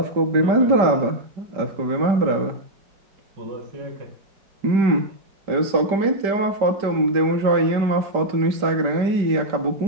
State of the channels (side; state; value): left; late; 5.2 ms